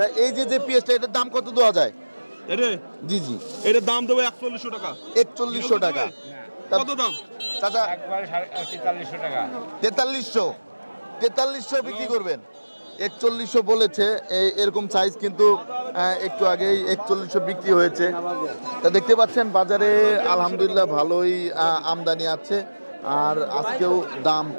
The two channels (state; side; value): inverted; both; correlation -1.00